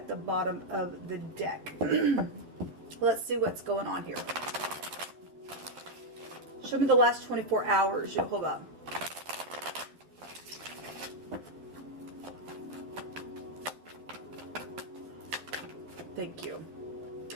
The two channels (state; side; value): late; left; 12 ms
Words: the bottom of the deck. Let's see what's going on here. Show me the last 24 hours, YHVH. Thank you.